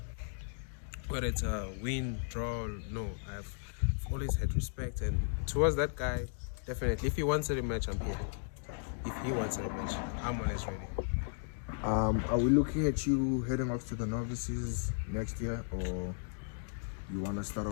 a win, draw. No, I've always had respect, and towards that guy, definitely. If he wants a rematch, I'm here. If he wants a rematch, I'm always ready. Are we looking at you heading off to the novices next year, or you want to start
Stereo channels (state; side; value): silent; right; digital silence